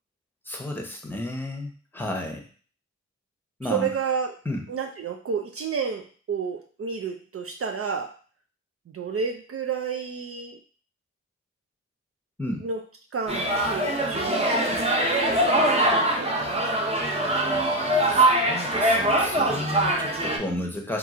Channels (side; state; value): both; normal; correlation 0.08